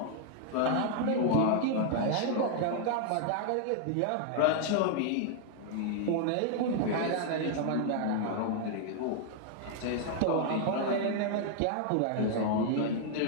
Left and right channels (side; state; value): both; different; correlation 0.00